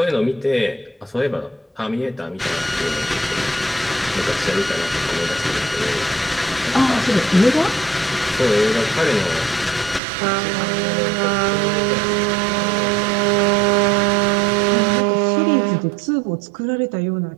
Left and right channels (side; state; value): left; drops out; at 10.0 s